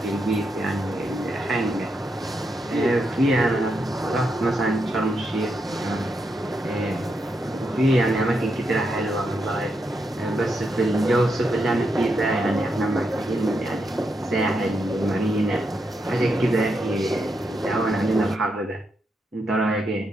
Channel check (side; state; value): both; normal; correlation 0.82